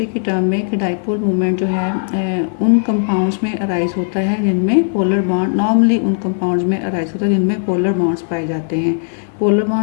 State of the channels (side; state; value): right; silent; digital silence